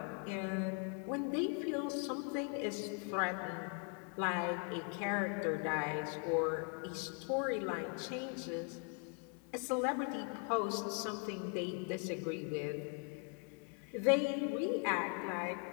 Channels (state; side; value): quieter; right; 37.9 dB